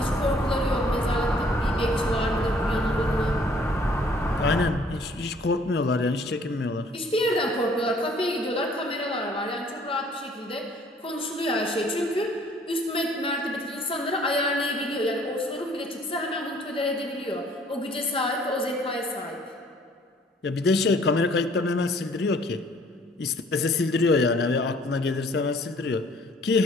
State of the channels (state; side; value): normal; both; correlation 0.58